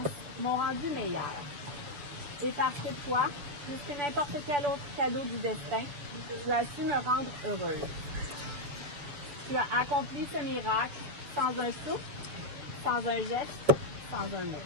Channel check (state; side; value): late; left; 6.9 ms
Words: m'ont rendu meilleur. Et parce que toi, plus que n'importe quel autre cadeau du destin, tu as su me rendre heureuse. Tu as accompli ce miracle sans un souffle, sans un geste, sans un mot.